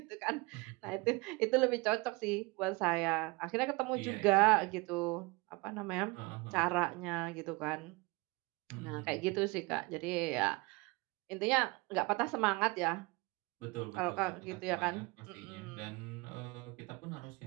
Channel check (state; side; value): quieter; left; 25.7 dB